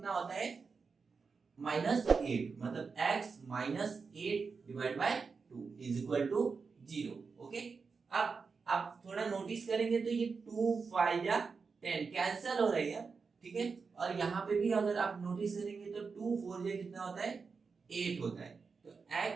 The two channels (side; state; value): left; quieter; 5.0 dB